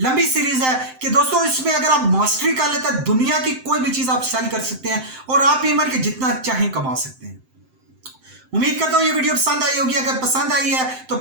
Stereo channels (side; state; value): left; late; 7.7 ms